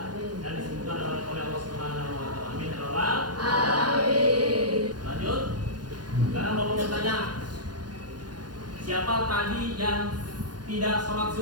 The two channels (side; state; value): left; late; 0.70 ms